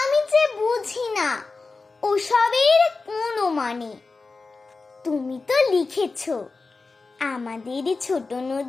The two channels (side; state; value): right; quieter; 4.0 dB